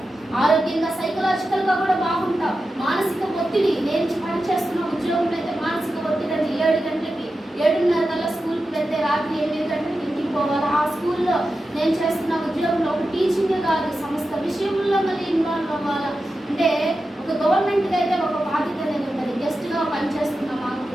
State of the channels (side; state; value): both; normal; correlation 0.91